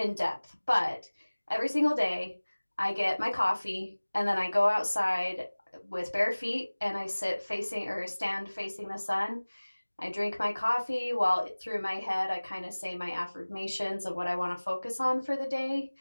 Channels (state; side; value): inverted; both; correlation -1.00